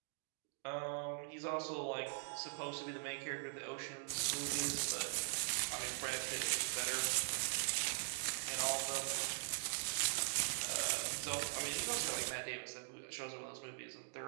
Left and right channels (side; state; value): left; silent; digital silence